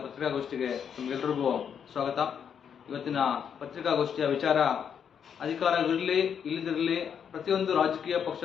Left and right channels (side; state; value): right; quieter; 7.8 dB